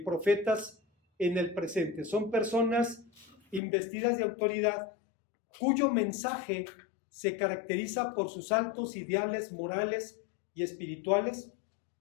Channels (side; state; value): right; drops out; at 3.6 s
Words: profetas en el presente. Son personas investidas de autoridad cuyo mensaje se caracteriza por sus altos ideales morales y espirituales